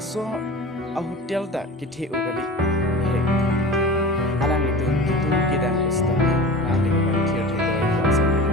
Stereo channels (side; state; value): both; normal; correlation 0.34